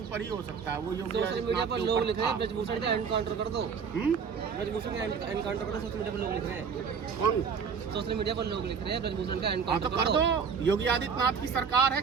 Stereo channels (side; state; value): left; quieter; 6.3 dB